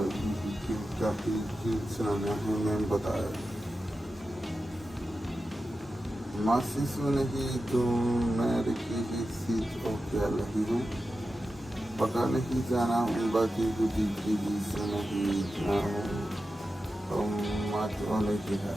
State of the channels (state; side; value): normal; both; correlation 0.92